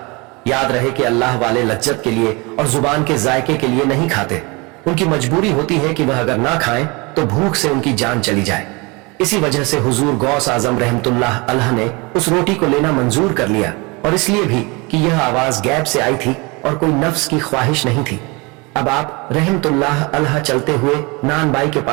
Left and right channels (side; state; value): left; quieter; 26.9 dB